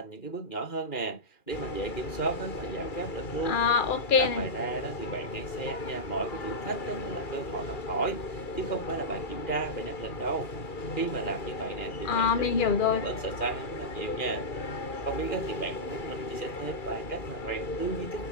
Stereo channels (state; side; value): late; right; 2.4 ms